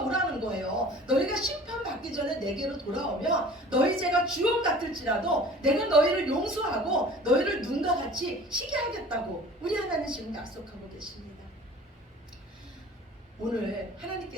거예요. 너희가 심판받기 전에 내게로 돌아오면 너희 죄가 주홍 같을지라도 내가 너희를 용서하고 너희를 눈과 같이 희게 하겠다고 우리 하나님 지금 약속하고 계십니다. 오늘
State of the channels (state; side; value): normal; both; correlation 0.45